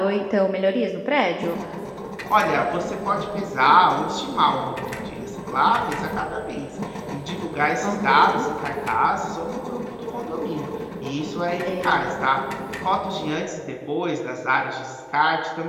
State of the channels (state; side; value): identical; both; correlation 1.00